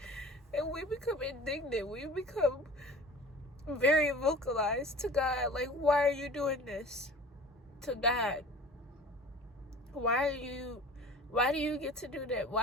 And we become indignant. We become very vocalized to God. Like, why are you doing this to God? Why do you get to do that?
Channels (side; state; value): both; normal; correlation 0.42